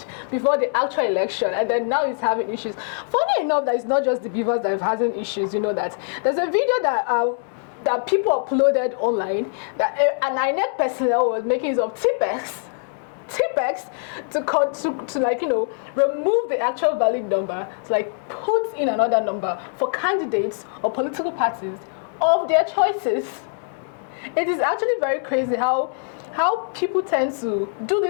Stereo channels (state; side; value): silent; right; 64 dB below the other